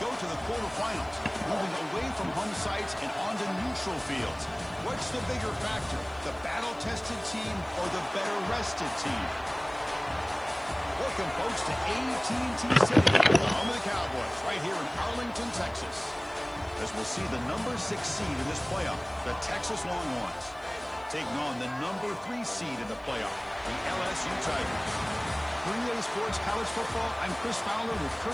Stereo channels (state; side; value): noise; right; hiss, 30 dB below the sound